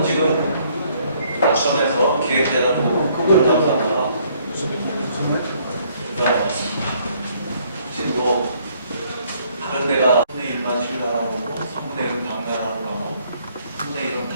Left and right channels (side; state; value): both; inverted; correlation -0.65